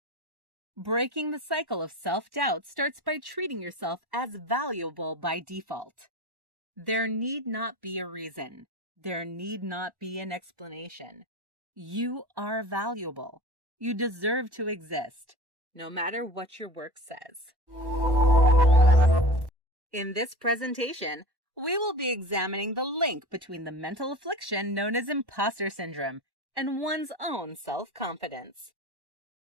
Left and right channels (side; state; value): left; late; 1.1 ms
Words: Breaking the cycle of self-doubt starts by treating yourself as valuable by default. There need not be a reason. There need not be an explanation. You are valuable. You deserve to exist, no matter what your work says. In this presentation, we will be examining the link between the mental affliction known as imposter syndrome and one's own self-confidence.